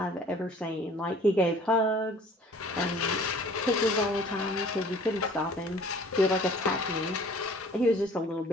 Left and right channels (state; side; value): normal; both; correlation 0.51